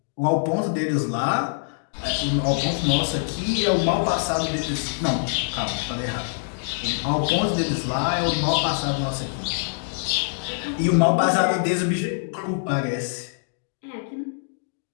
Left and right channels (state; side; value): silent; right; digital silence